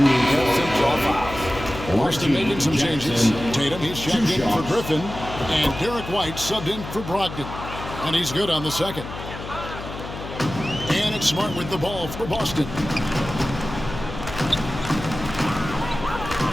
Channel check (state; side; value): noise; left; hum, 10 dB below the sound